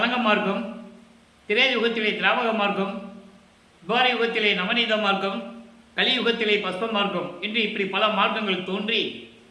மார்க்கம், திரேத யுகத்திலே திராவக மார்க்கம், துவார யுகத்திலே நவநீத மார்க்கம், கலியுகத்திலே பஸ்ப மார்க்கம் என்று இப்படி பல மார்க்கங்கள் தோன்றி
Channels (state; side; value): identical; both; correlation 1.00